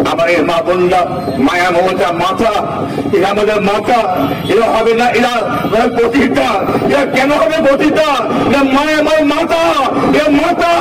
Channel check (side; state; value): both; identical; correlation 1.00